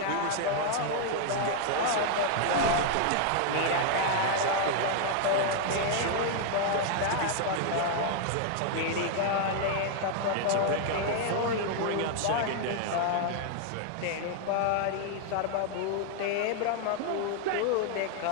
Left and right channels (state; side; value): different; both; correlation 0.00